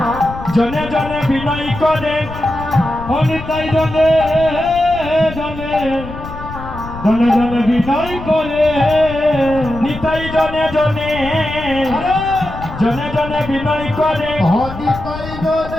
জনে জনে বিনয় করে ও নিতাই জনে জনে জনে জনে বিনয় করে নিতাই জনে জনে জনে জনে বিনয় করে হরিতাই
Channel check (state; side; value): noise; left; rumble, 11 dB below the sound